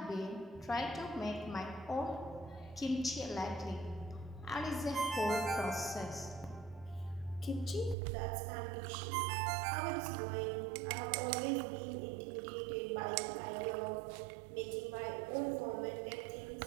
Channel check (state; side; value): drops out; left; at 8.0 s